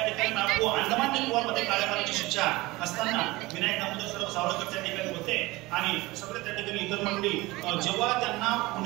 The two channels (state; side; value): quieter; left; 20.8 dB